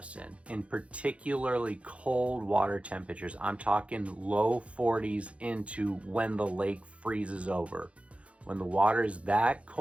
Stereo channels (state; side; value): late; left; 0.062 ms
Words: In particularly cold water temperatures, I'm talking low 40s into when the lake freezes over. When the water is that